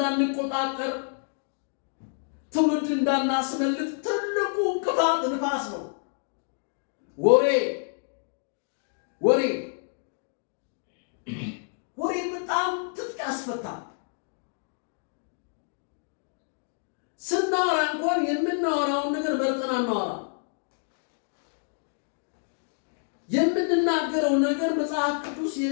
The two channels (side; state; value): right; silent; digital silence